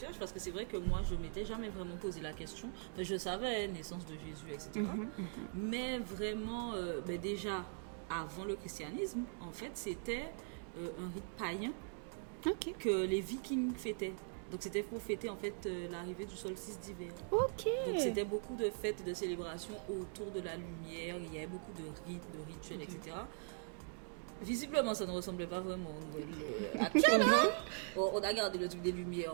parce que c'est vrai que moi je m'étais jamais vraiment posé la question. Enfin, je savais naissance de Jésus, etc. Mais vraiment, déjà avant le christianisme, en fait c'était un rite païen Ok. que les Vikings fêtaient. Donc c'était pour fêter en fait l'arrivée du solstice d'hiver. Ok. Donc c'était beaucoup de fêtes et de célébrations autour de la lumière. Il y avait beaucoup de rites, de rituels, etc. Visiblement, ça ne ressemblait pas vraiment au Noël actuel. Hein. On a gardé le truc des lumières,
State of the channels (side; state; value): left; silent; 50 dB below the other